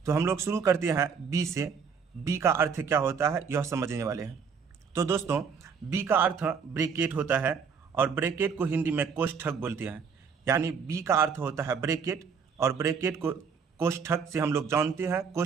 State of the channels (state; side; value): quieter; left; 6.1 dB